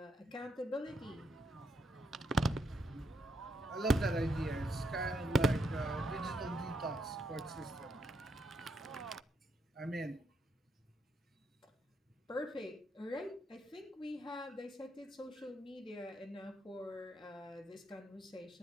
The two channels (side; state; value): both; normal; correlation 0.78